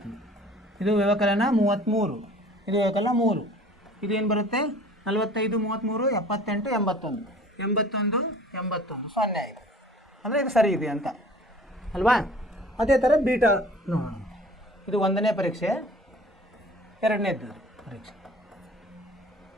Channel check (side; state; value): both; normal; correlation 0.48